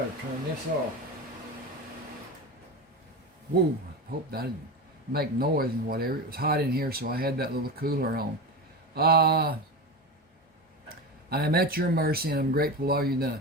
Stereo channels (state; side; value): normal; both; correlation 0.23